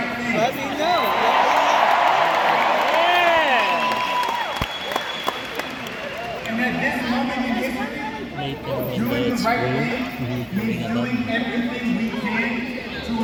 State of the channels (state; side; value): identical; both; correlation 1.00